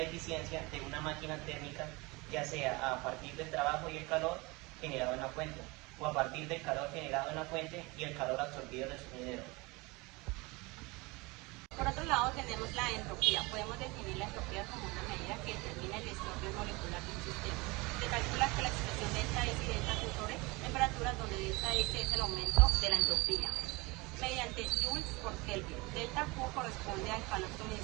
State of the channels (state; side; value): quieter; left; 24.8 dB